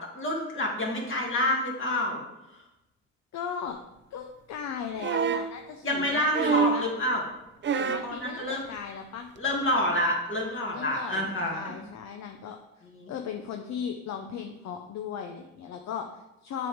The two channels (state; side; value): normal; both; correlation 0.01